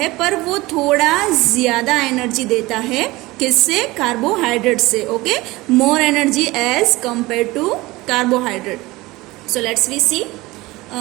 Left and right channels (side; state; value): left; quieter; 20.4 dB